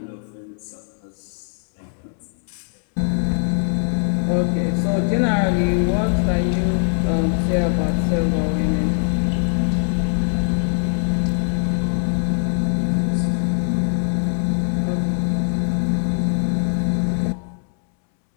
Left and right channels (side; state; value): right; silent; 65 dB below the other